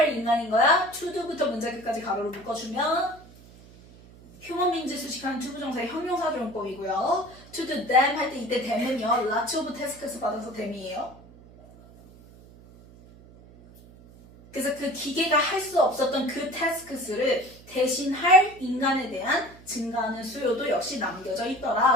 인간인 거야? to do부터 문제 끝까지 가로로 묶어주면 human beings 수식하는 투부정사의 형용사조용법이고요. to do them 할 때 이때 them은요. lots of tasks 받아서 them이에요. 그래서 그 기계가 할 수 없었던 그 tasks를 대신할 인간에 대한 증가하는 수요도 역시 남겨져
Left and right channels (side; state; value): right; noise; hum, 22 dB below the sound